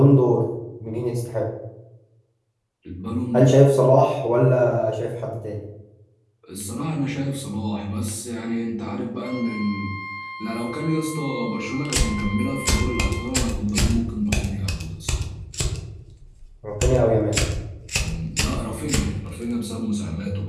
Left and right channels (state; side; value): identical; both; correlation 1.00